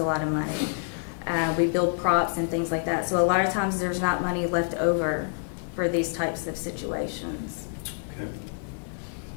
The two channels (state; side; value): silent; right; 60 dB below the other